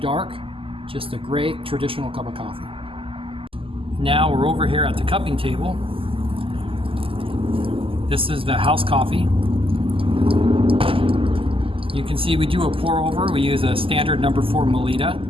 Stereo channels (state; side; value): late; left; 0.26 ms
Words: just a great traditional cup of coffee. Now we're over here at the cupping table. This is the house coffee. You can see we do a pour over. We use a standard number 4 Melita.